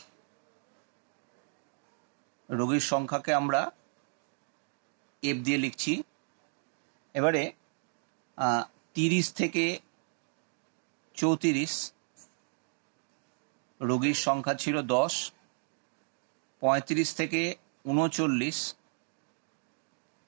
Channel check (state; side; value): silent; left; 55 dB below the other